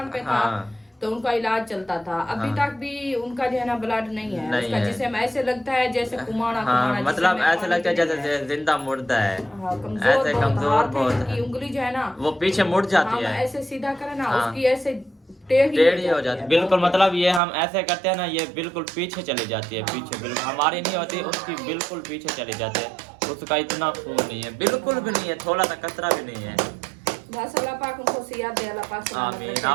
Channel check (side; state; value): left; drops out; at 17.4 s